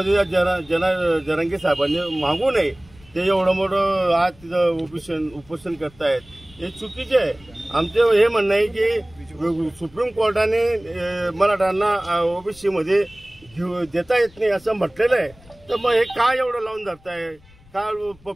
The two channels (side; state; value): left; noise; rumble, 26 dB below the sound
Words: जरांगे साहेबांनी मागू नये, ते एवढं मोठं आज तिथं उपोषण करतायत, हे चुकीचे आहे। आमचं हे म्हणणं आहे की सुप्रीम कोर्टाने मराठ्यांना ओबीसी मध्ये देता येत नाही असं म्हटलेलं आहे, तर मग हे काय एवढं लावून धरताय? का